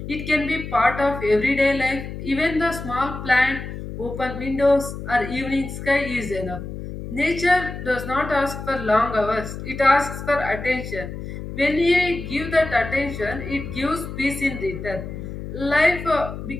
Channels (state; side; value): noise; left; hum, 9 dB below the sound